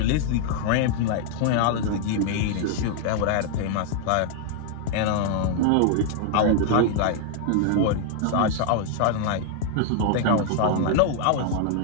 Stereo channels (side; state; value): both; different; correlation 0.00